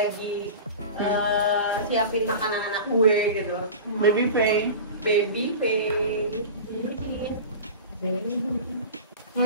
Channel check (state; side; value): inverted; both; correlation -0.33